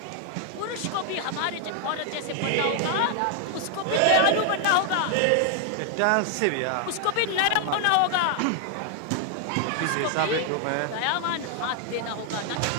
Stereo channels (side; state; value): both; different; correlation 0.00